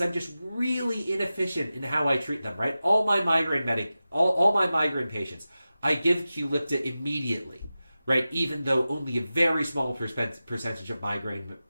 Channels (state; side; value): inverted; both; correlation -0.94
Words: I'm just really inefficient in how I treat them, right? All my migraine patients, I give Qulipta immediately, right? Even though only a very small percentage of migraine